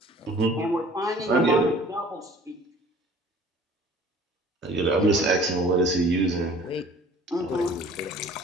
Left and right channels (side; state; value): both; normal; correlation 0.49